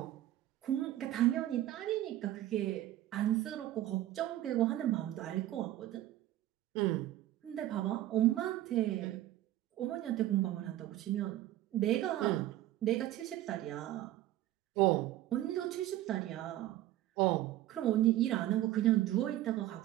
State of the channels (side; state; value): left; quieter; 14.0 dB